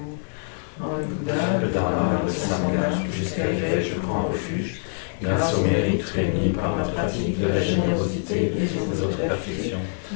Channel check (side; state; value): right; silent; digital silence